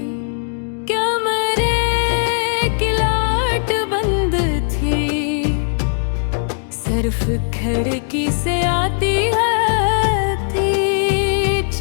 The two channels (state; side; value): silent; right; digital silence